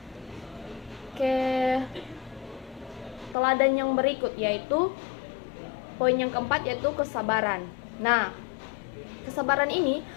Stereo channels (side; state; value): right; drops out; at 3.4 s